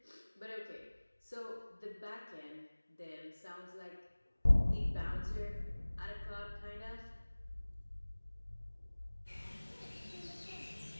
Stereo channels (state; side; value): inverted; both; correlation -1.00